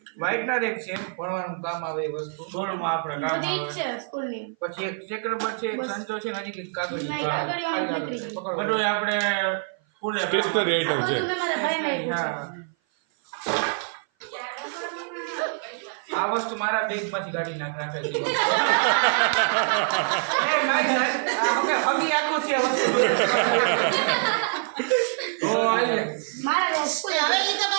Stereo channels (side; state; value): left; silent; 56 dB below the other